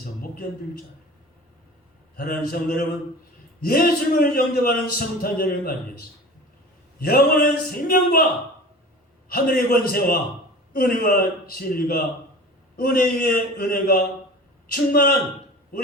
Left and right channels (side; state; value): both; normal; correlation 0.38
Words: 못 견딜 줄 알아요. 사랑하는 성도 여러분, 예수님을 영접하는 성탄절을 맞이해서 영원한 생명과 하늘의 권세와 은혜와 진리가, 은혜 위에 은혜가 충만한